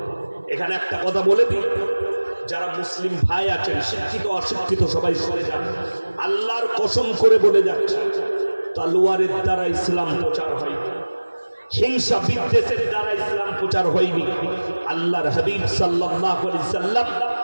এখানে একটা কথা বলে দিই, যারা মুসলিম ভাই আছেন, শিক্ষিত অশিক্ষিত সবাই সরে যান, আল্লাহর কসম করে বলে যাচ্ছে, তলোয়ারের দ্বারা ইসলাম প্রচার হয়নি, হিংসা বিদ্বেষের দ্বারা ইসলাম প্রচার হয়নি। আল্লাহর হাবিব সাল্লাল্লাহু আলাইহি সাল্লাম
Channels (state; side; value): inverted; both; correlation -1.00